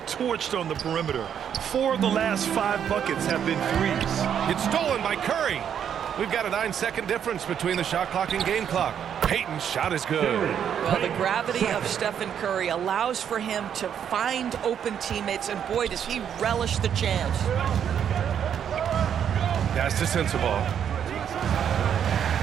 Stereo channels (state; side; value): quieter; left; 8.7 dB